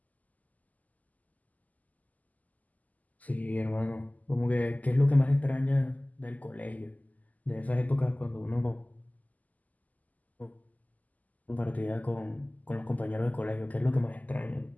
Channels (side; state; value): right; late; 0.078 ms